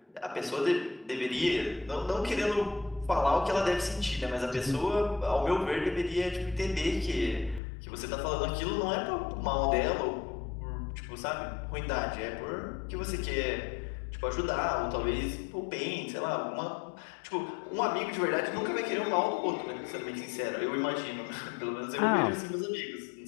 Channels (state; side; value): drops out; right; at 7.6 s